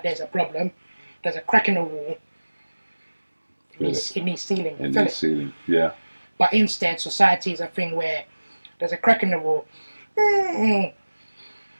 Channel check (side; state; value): both; inverted; correlation -1.00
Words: there's a problem. There's a crack in the wall. It needs sealing. It needs sealing, yeah. But instead, society is a thing where there's a crack in the wall.